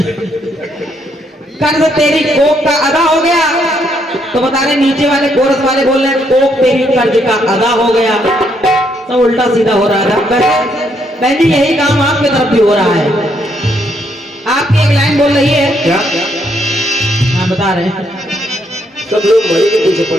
कर्ज तेरी कोख का अदा हो गया, तो बता रहे नीचे वाले कोरस वाले बोल रहे कोख तेरी कर्ज का अदा हो गया। तो उल्टा सीधा हो रहा था। बहन जी यही काम आपकी तरफ भी हो रहा है। आपकी एक लाइन बोल रही है क्या? हाँ बता रहे हैं। सब लोग मड़ी के पीछे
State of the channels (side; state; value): both; normal; correlation 0.73